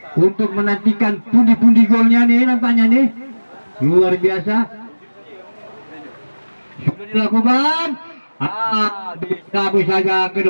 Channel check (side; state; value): both; inverted; correlation -1.00